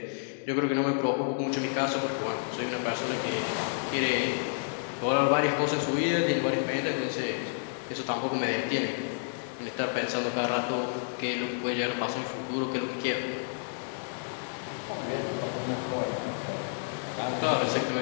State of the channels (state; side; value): silent; right; digital silence